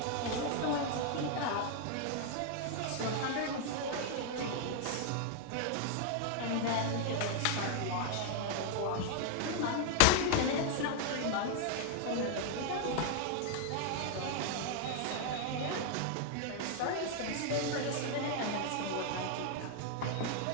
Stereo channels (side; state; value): both; different; correlation 0.00